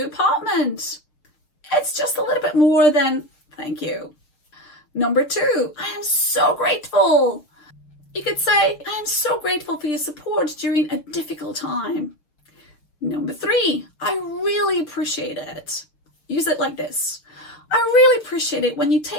apartment. It's just a little bit more than thank you. Number 2, I am so grateful. You could say, I am so grateful for your support during a difficult time. Number 3, I really appreciate it. Use it like this. I really appreciate it when you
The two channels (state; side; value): late; right; 6.6 ms